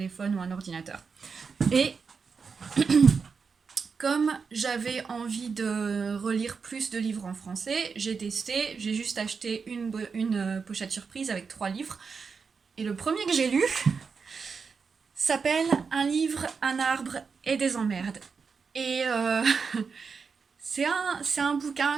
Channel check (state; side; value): quieter; left; 5.4 dB